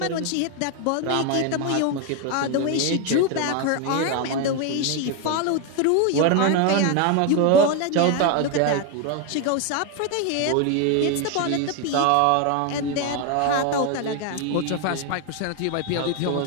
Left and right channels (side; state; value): both; different; correlation 0.01